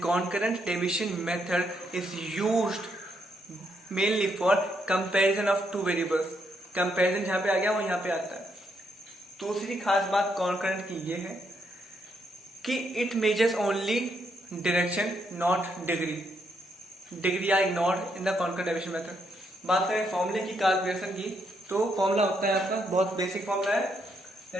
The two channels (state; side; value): normal; both; correlation 0.76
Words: concurrent deviation method is used mainly for comparison of two variables. Comparison जहां पे आ गया वो यहाँ पे आता है। दूसरी खास बात कॉन्करेंट की ये है कि it measures only direction not degree. Degree are ignored in the concurrent deviation method. बात करें फॉर्मूले की कार्ल पियर्सन की, तो फॉर्मूला होता है आपका, बहुत बेसिक फॉर्मूला है,